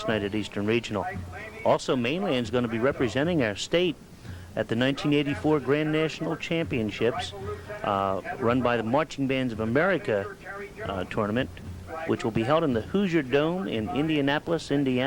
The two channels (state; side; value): identical; both; correlation 1.00